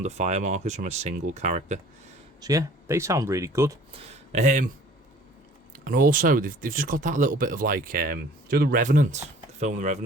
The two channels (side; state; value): both; normal; correlation 0.51